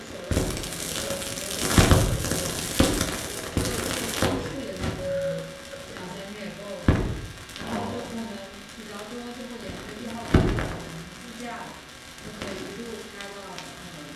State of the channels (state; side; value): identical; both; correlation 1.00